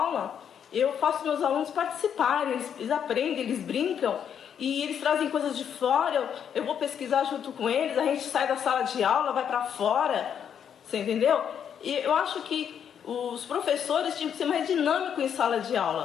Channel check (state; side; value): quieter; right; 8.4 dB